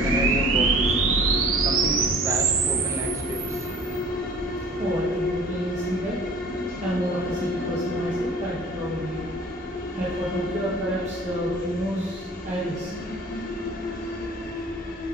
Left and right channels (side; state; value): both; normal; correlation 0.48